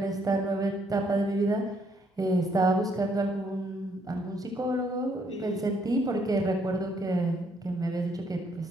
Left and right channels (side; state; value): both; normal; correlation 0.70